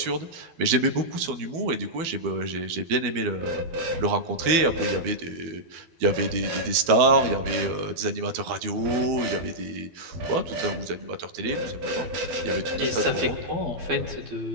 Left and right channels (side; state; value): left; late; 12 ms